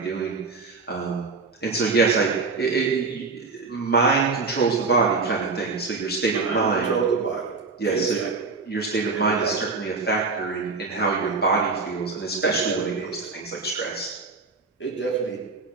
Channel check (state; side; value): quieter; left; 4.2 dB